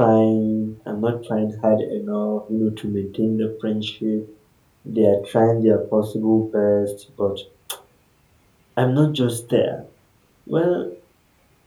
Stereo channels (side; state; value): both; identical; correlation 1.00